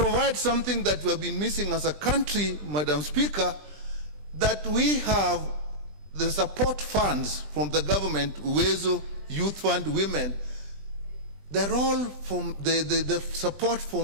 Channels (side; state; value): left; late; 20 ms